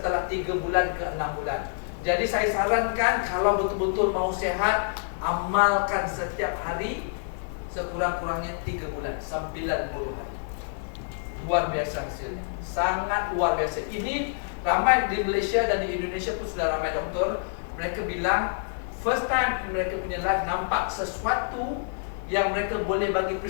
3 bulan ke 6 bulan. Jadi saya sarankan kalau betul-betul mau sehat, amalkan setiap hari sekurang-kurangnya 3 bulan, 90 hari. Luar biasa hasilnya, sangat luar biasa. Ini ramai di Malaysia dan di Indonesia pun sudah ramai doktor. Mereka bilang first time mereka punya life nampak sesuatu yang mereka boleh bagi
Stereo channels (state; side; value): silent; right; 58 dB below the other